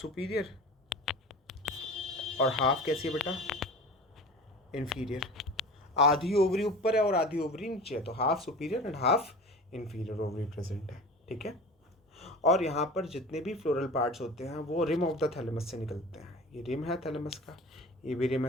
और हाफ कैसी है बेटा? इन्फीरियर। आधी ओवरी ऊपर है और आधी ओवरी नीचे है, तो half superior and half inferior ovary present है। ठीक है। और यहाँ पर जितने भी फ्लोरल पार्ट्स होते हैं वो रिम ऑफ द थैलेमस से निकलते हैं। ये रिम है थैलेमस का, ये भी रिम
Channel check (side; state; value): both; normal; correlation 0.37